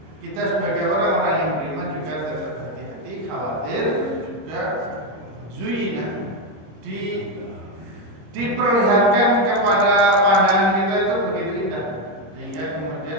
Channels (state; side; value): late; left; 26 ms